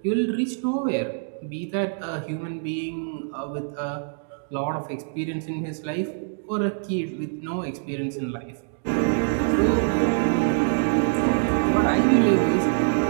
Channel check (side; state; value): left; silent; digital silence